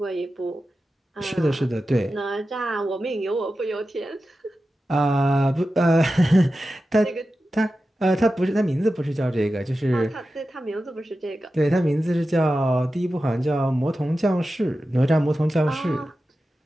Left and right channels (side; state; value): both; normal; correlation 0.93